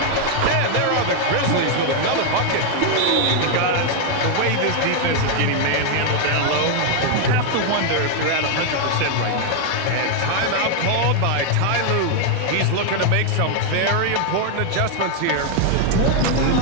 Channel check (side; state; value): both; different; correlation 0.00